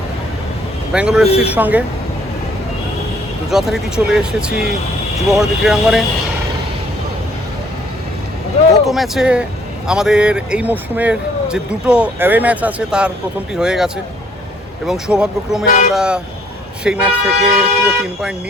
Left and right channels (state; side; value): normal; both; correlation 0.62